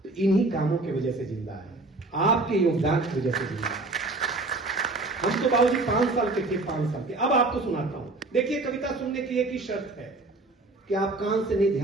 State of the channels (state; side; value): quieter; left; 3.1 dB